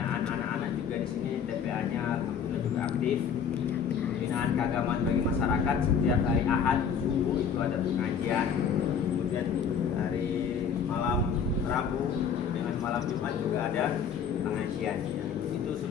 anak-anak juga di sini TPA-nya alhamdulillah juga aktif. Pembinaan keagamaan bagi masyarakat, setiap hari Ahad subuh itu ada pengajian. Kemudian hari malam Rabu dengan malam Jumat juga ada pengajian. Itu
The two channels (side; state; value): right; quieter; 7.1 dB